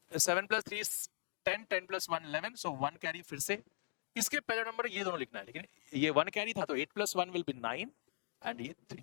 7 plus 3 is 10, 10 plus 1 11. So 1 carry फिर से, इसके पहले नंबर ये दोनों लिखना है, लेकिन ये 1 कैरी था तो 8 plus 1 will be 9 एंड ये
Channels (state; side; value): silent; right; digital silence